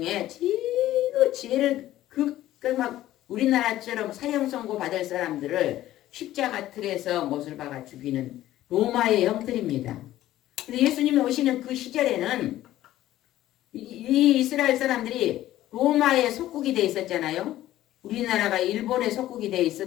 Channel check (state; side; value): quieter; right; 14.2 dB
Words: 제일 막 우리나라처럼 사형 선고 받을 사람들을 십자가 틀에서 못을 박아 죽이는 로마의 형틀입니다. 근데 예수님이 오시는 그 시절에는 이 이스라엘 사람들이 로마의 속국이 돼 있었잖아요. 우리나라가 일본의 속국이 돼